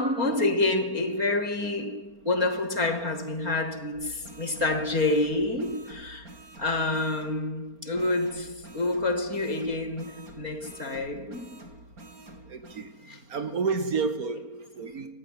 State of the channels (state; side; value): late; left; 4.3 ms